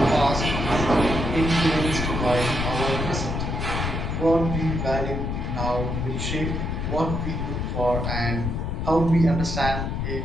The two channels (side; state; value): left; noise; rumble, 2 dB below the sound